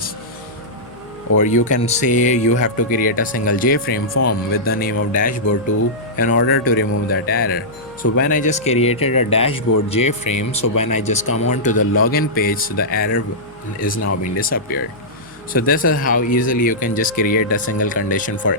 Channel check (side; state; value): left; noise; hum, 28 dB below the sound